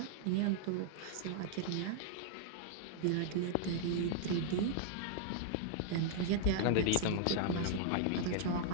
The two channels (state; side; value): different; both; correlation -0.01